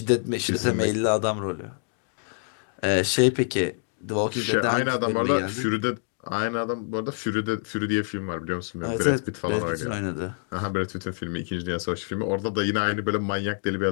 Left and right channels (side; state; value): right; silent; digital silence